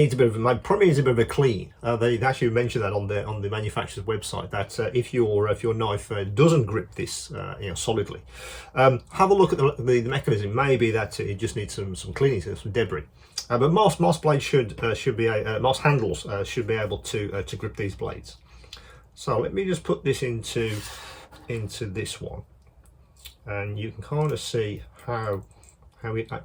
probably needs a bit of a clean. They actually mention that on the manufacturer's website, that if your knife doesn't grip this solidly, have a look at the mechanism. Maybe that it just needs some cleaning, some debris. But most blades should be most handles should be able to grip these blades. So let me just put this into this one, and you can kind of see how it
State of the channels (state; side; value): identical; both; correlation 1.00